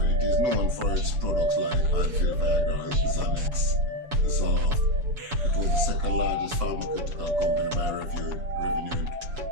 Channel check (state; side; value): late; left; 7.0 ms